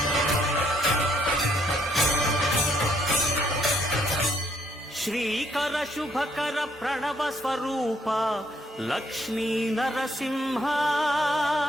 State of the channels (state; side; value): normal; both; correlation 0.70